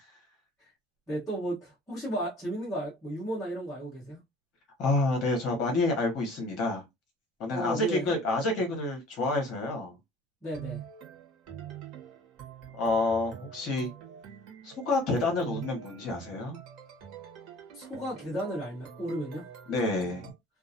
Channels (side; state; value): both; normal; correlation 0.50